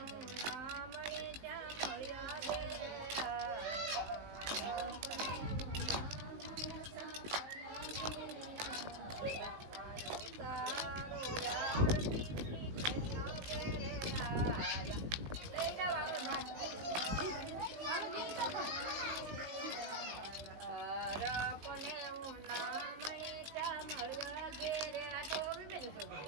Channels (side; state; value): left; late; 19 ms